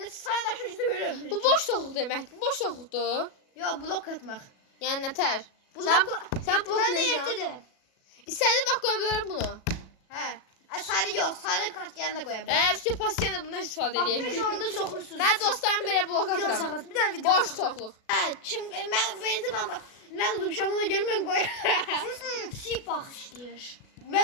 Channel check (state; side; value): late; right; 37 ms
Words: sana da şu yüzü görüyorum. Bu boş soğuk deməkdir. Boş soğukdur. Yo blok atmak. Yəni nətər? Sen blok Ben de bloklayacağım. yetti derim. İstediğin vaxt qoya bilərəm bunu. He. Sarı yok. Sarı kart yanında koyabilirim. İşte pasiyenlə bundan istifadə Bak edəyək. 5 onda sokursunuz. Mən dostlarım belə blok Video atıram. sakız. Bir tane video Boş sakız. soğuqluq. Ha, ben bak. Ben oldum şamına gelmem koy. Sip bakışlıyor.